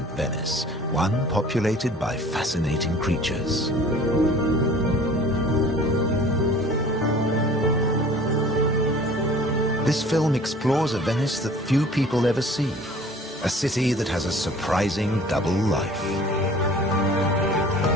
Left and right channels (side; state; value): both; normal; correlation 0.47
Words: Venice, one populated by fascinating creatures. This film explores a Venice that few people ever see, a city that has a surprising double life.